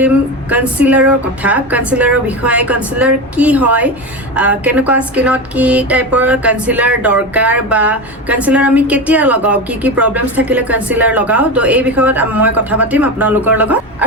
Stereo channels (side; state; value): both; normal; correlation 0.21